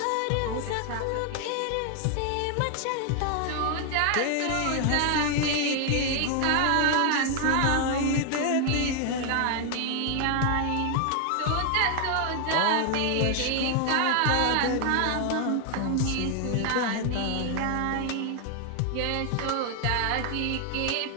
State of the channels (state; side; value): different; both; correlation 0.00